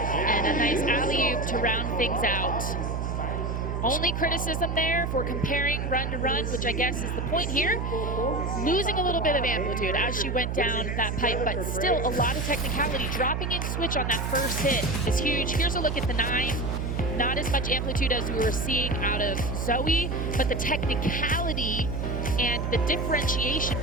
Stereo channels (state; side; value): noise; right; hum, 2 dB below the sound